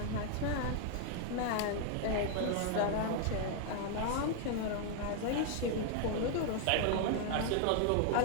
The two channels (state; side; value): different; both; correlation 0.00